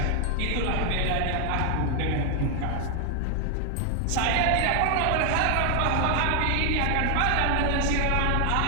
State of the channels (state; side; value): different; both; correlation 0.00